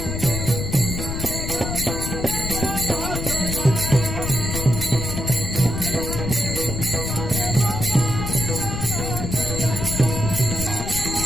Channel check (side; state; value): left; noise; rumble, 3 dB below the sound